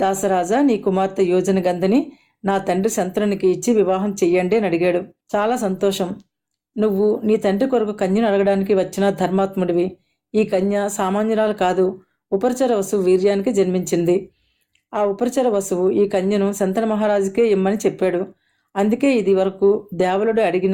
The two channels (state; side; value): identical; both; correlation 1.00